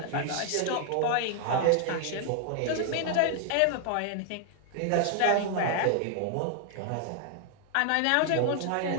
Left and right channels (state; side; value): different; both; correlation 0.00